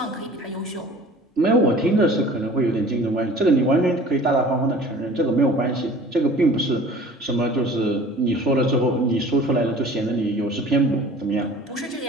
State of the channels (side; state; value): both; normal; correlation 0.45